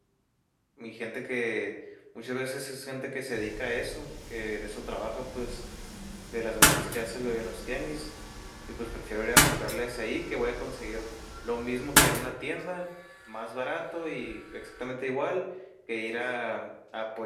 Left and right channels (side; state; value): both; identical; correlation 1.00